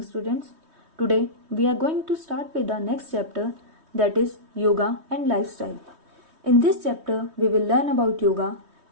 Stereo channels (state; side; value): late; left; 3.2 ms